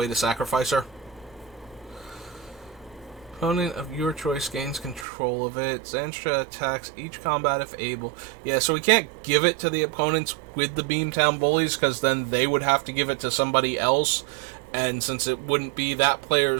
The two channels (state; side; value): drops out; left; at 5.1 s